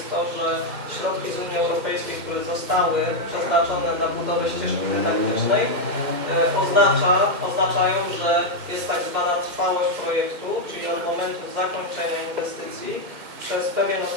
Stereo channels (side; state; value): left; late; 2.1 ms